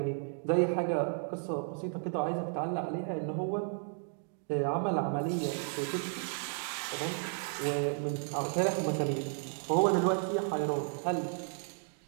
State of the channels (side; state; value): left; silent; 56 dB below the other